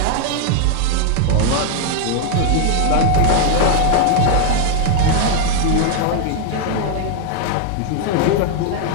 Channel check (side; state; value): both; different; correlation 0.00